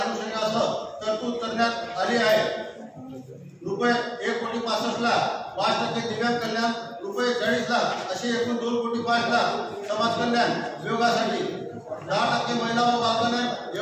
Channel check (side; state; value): both; identical; correlation 1.00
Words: तरतूद करण्यात आली आहे. रुपये 1,65,00,000 5% दिव्यांग कल्याण, रुपये 40,00,000 असे एकूण 2,05,00,000 समाज कल्याण विभागासाठी, 10% महिला व बालकल्याण